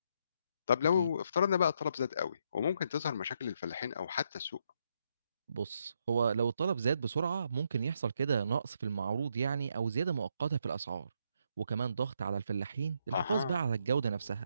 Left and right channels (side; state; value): both; inverted; correlation -0.76